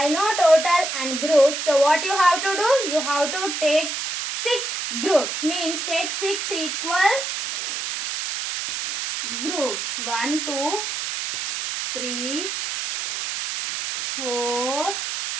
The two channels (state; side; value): noise; right; hiss, 3 dB below the sound